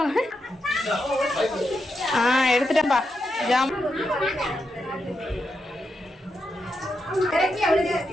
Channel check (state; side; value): normal; both; correlation 0.85